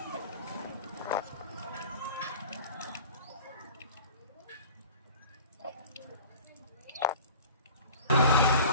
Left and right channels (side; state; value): both; inverted; correlation -0.41